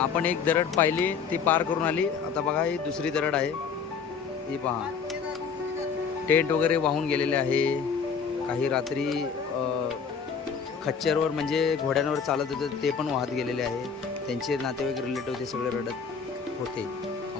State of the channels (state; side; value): quieter; right; 6.1 dB